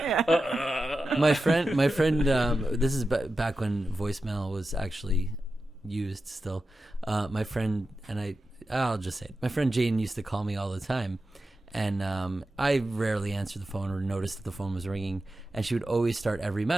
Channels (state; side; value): normal; both; correlation 0.92